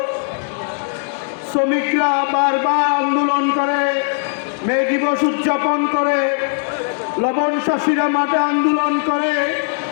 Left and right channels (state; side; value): silent; right; digital silence